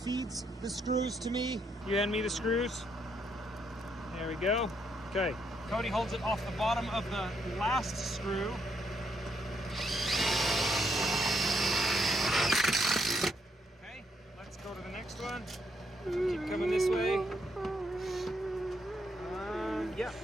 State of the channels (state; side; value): normal; both; correlation 0.75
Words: the screws to me. You hand me the screws. There we go. Okay. Cody holds it off the bottom of the last screw. Okay, let's go to the next one. Keep coming this way. Yeah,